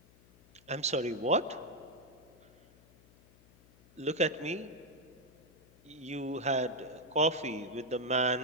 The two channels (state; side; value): noise; left; hum, 27 dB below the sound